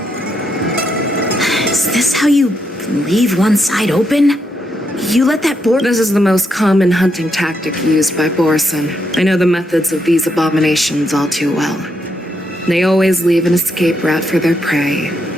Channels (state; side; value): normal; both; correlation 0.79